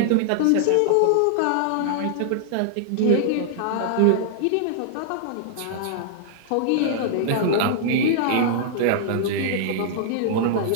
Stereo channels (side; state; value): both; different; correlation -0.01